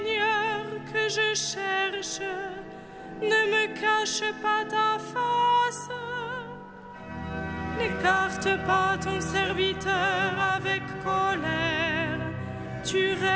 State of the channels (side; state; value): both; identical; correlation 1.00